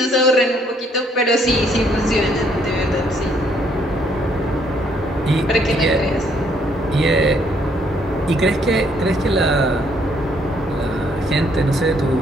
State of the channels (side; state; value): both; normal; correlation 0.68